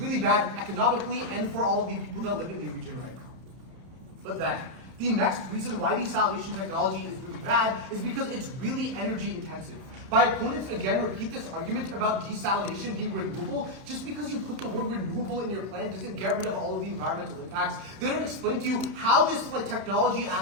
bad economically and for all of the people that live in the region right now. But then, the next reason why desalination technology is really bad is because it's really energy intensive. My opponents again repeat this argument about desalination being renewable. Just because you put the word renewable in your plan doesn't get rid of all of the environmental impacts. They don't explain to you how this technology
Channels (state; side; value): late; left; 31 ms